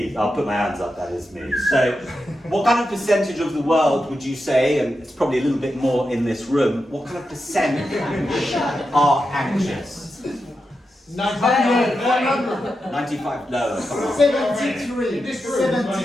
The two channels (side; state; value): both; normal; correlation 0.88